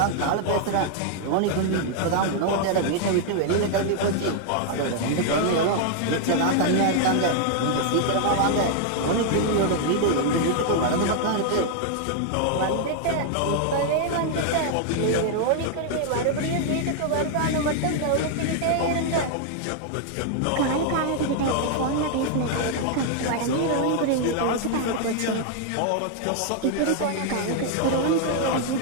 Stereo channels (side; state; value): both; different; correlation 0.00